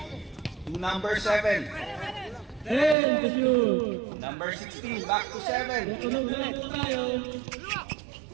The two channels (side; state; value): left; drops out; at 3.0 s